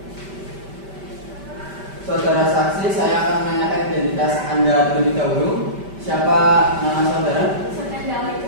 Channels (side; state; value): left; late; 5.1 ms